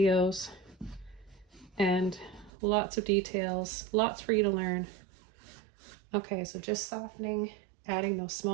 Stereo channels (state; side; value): drops out; left; at 2.5 s